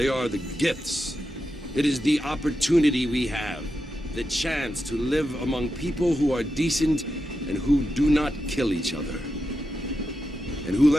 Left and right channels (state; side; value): normal; both; correlation 0.88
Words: are the gifts. It is the opportunity we have, the chance to live among people who are decent and who do not kill each other, and who